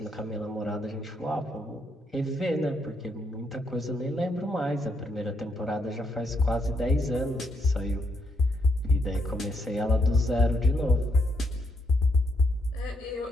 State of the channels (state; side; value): normal; both; correlation 0.77